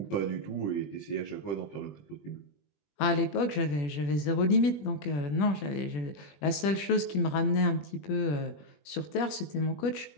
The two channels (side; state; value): right; late; 21 ms